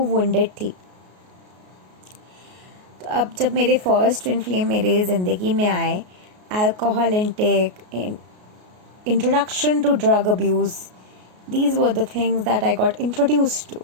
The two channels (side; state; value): left; late; 33 ms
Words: वुंडेड थी. तो अब जब मेरे फर्स्ट ट्विन फ्लेम मेरे ज़िंदगी में आए, alcohol intake, introduction to drug abuse, these were the things that I got introduced